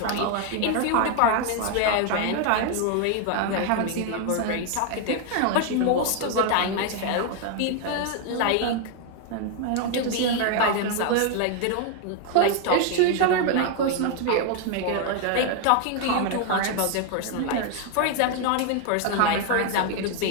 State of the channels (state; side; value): different; both; correlation 0.00